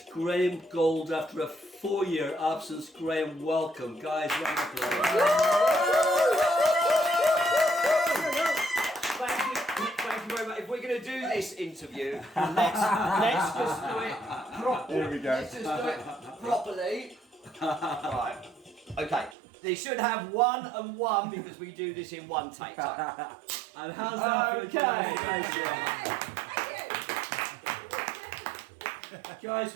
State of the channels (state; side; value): drops out; left; at 19.4 s